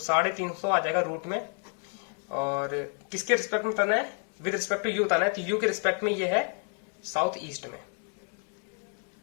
आ जाएगा रूट में। और किसके रिस्पेक्ट में बताना है, विद रिस्पेक्ट टू यू बताना है, तो यू के रिस्पेक्ट में ये है साउथ ईस्ट में,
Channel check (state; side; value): quieter; right; 39.3 dB